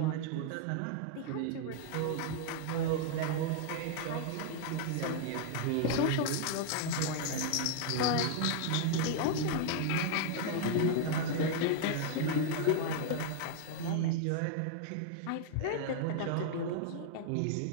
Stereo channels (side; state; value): both; different; correlation 0.00